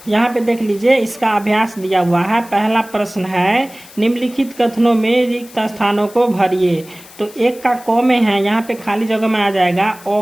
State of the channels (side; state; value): left; noise; hiss, 21 dB below the sound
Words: यहाँ पे देख लीजिए, इसका अभ्यास दिया हुआ है। पहला प्रश्न है, निम्नलिखित कथनों में रिक्त स्थानों को भरिए। तो एक का क में है, यहाँ पे खाली जगह में आ जाएगा,